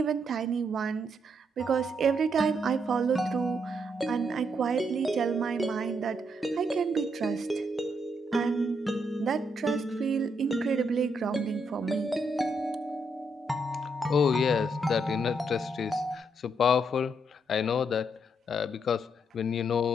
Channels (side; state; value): both; normal; correlation 0.76